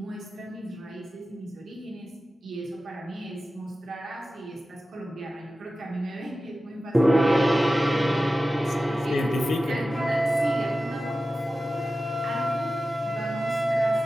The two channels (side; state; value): both; normal; correlation 0.94